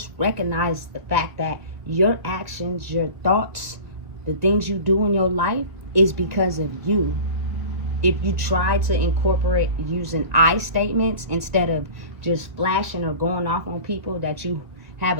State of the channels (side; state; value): left; late; 1.8 ms